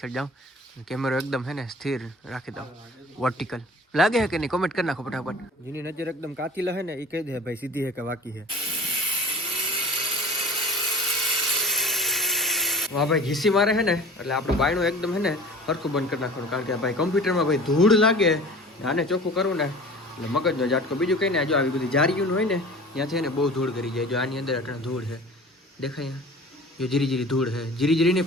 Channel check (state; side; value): normal; both; correlation 0.42